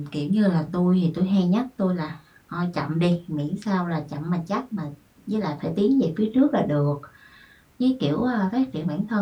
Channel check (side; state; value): both; identical; correlation 1.00